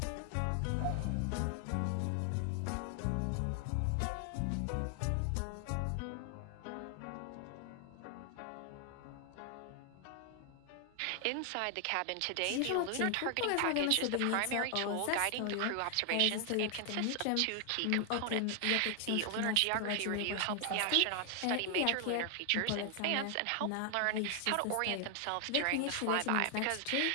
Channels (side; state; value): both; different; correlation 0.00